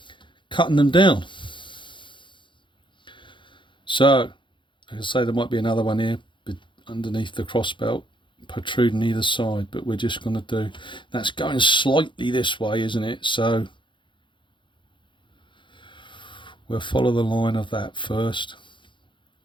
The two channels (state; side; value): late; right; 0.23 ms